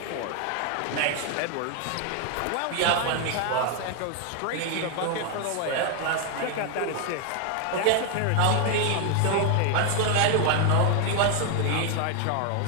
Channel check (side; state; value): both; different; correlation 0.00